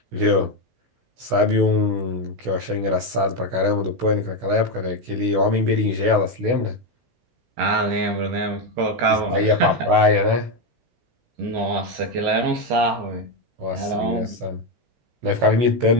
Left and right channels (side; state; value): left; late; 16 ms